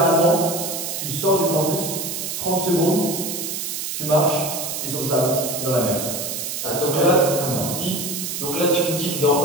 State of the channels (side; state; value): right; noise; hiss, 4 dB below the sound